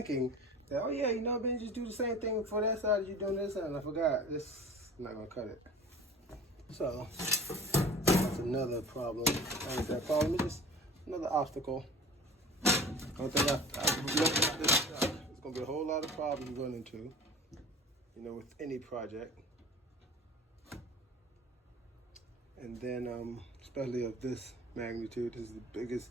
that, oh yeah, you know, Ben, just do the same thing for that side as you're doing this side. And I forgot, this, I'm not gonna cut it. So that's another problem. What is that problem? It's just another obstacle. I don't think I've looked at this gonna be a whole lot of problems you run into, with any project. And then, especially of this magnitude, this is the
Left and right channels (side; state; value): both; normal; correlation 0.39